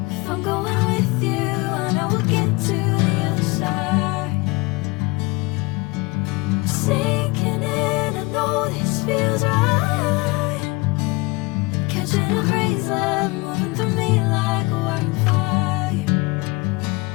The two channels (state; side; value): quieter; right; 24.6 dB